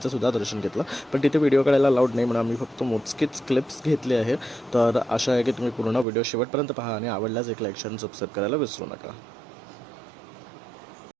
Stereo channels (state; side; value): drops out; left; at 6.1 s